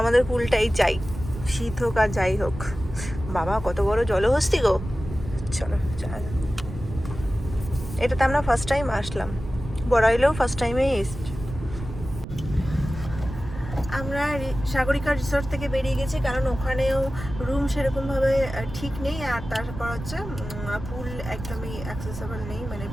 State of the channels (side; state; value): right; noise; rumble, 10 dB below the sound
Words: পুলটাই চাই, শীত হোক আর যাই হোক। বাবা কত বড় জলহস্তি গো। চলো যাই। এটাতে আমরা ফার্স্ট টাইম আসলাম, বড়াইলেও ফার্স্ট টাইমেই এসছি। আমরা সাগরিকা রিসর্ট থেকে বেরিয়ে গেছি, কারণ ওখানেও রুম সেরকমভাবে ঠিক নেই, আর তারপর হচ্ছে পুল একদমই অ্যাক্সেসেবল নেই, মানে